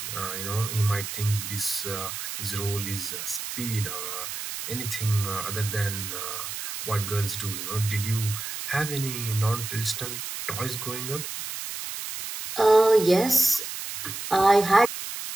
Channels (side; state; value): right; noise; hiss, 7 dB below the sound